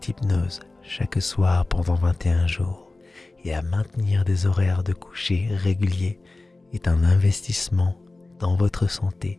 hypnose chaque soir pendant 21 jours et à maintenir des horaires de coucher réguliers est un investissement dans votre santé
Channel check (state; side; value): quieter; right; 3.2 dB